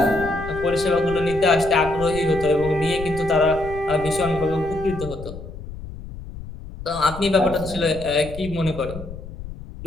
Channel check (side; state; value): left; noise; rumble, 12 dB below the sound